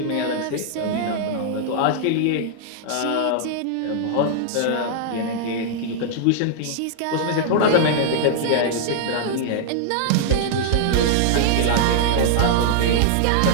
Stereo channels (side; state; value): both; different; correlation -0.01